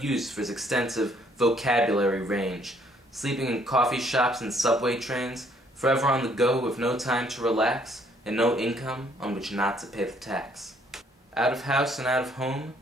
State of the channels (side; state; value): both; normal; correlation 0.65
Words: for his extensive vocabulary range, sleeping in coffee shops and subway trains, forever on the go with no time to relax, and no income on which not to pay the tax. Out of house and out of home,